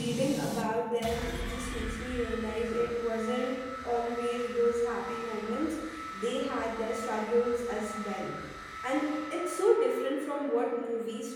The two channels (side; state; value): both; identical; correlation 1.00